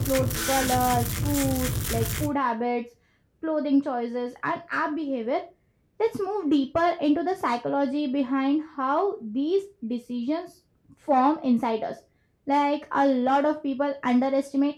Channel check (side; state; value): both; identical; correlation 1.00